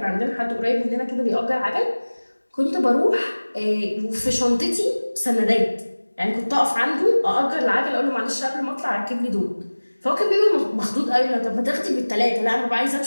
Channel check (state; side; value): inverted; both; correlation -1.00